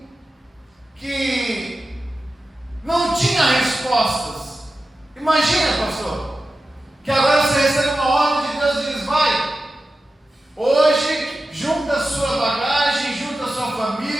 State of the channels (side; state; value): both; normal; correlation 0.93